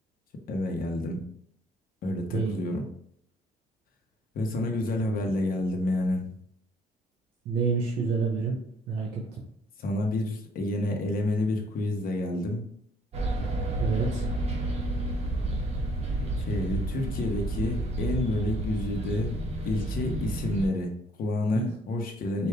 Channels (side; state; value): both; normal; correlation 0.63